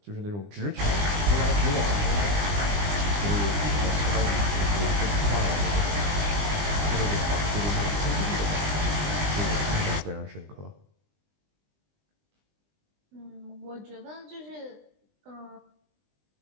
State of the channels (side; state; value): left; late; 20 ms